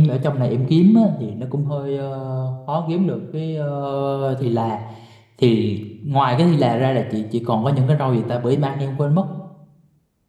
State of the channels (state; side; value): identical; both; correlation 1.00